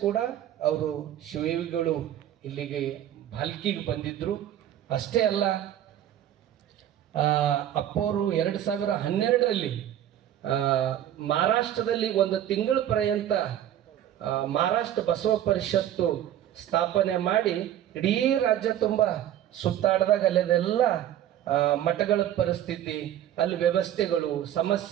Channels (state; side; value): quieter; left; 11.4 dB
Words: ಕೂಡ ಅವರು ಶಿವಿಗಳು ಇಲ್ಲಿಗೆ ಭಾಲ್ಕಿಗೆ ಬಂದಿದ್ದರು. ಅಷ್ಟೇ ಅಲ್ಲ, ಅಪ್ಪವರು 2012ರಲ್ಲಿ ಮಹಾರಾಷ್ಟ್ರದಲ್ಲಿ ಒಂದು ತಿಂಗಳ ಪರ್ಯಂತ ಮಹಾರಾಷ್ಟ್ರ ಬಸವ ಪರಿಷತ್ತು ಸ್ಥಾಪನೆ ಮಾಡಿ ಇಡೀ ರಾಜ್ಯ ತುಂಬ ಸುತ್ತಾಡಿದಾಗ ಅಲ್ಲೆಲ್ಲ ಮಠಗಳ ಪರಿಸ್ಥಿತಿ, ಅಲ್ಲಿ ವ್ಯವಸ್ಥೆಗಳು,